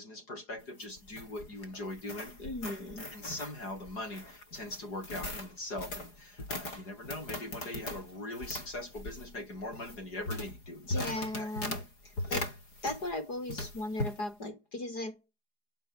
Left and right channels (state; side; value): late; right; 4.8 ms